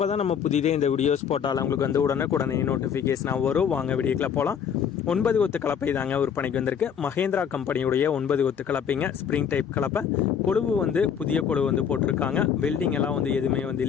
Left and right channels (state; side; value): quieter; right; 7.7 dB